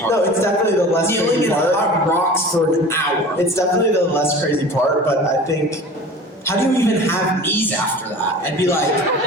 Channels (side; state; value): both; normal; correlation 0.39